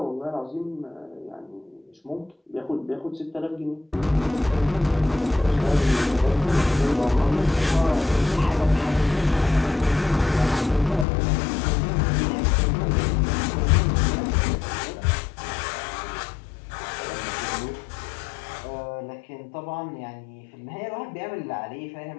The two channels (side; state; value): right; drops out; at 11.1 s